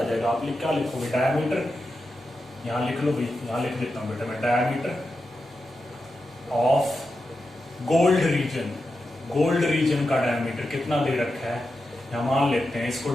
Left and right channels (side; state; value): both; normal; correlation 0.89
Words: जाएगा। आप क्या लिखोगे, डायमीटर, यहाँ लिख लो भाई, यहाँ लिख देता हूँ बेटा मैं, diameter of gold region. Gold reason का डायमीटर कितना दे रखा है, यहाँ मान लेते हैं, इसको